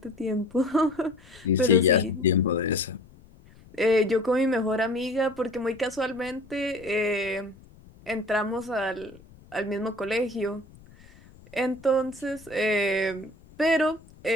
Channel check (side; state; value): left; noise; rumble, 24 dB below the sound